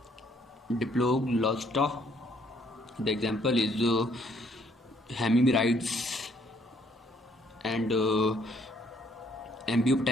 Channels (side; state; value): both; normal; correlation 0.66